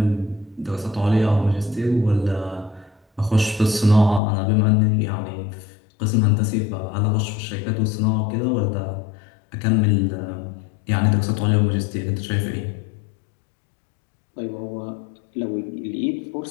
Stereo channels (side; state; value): right; drops out; at 4.2 s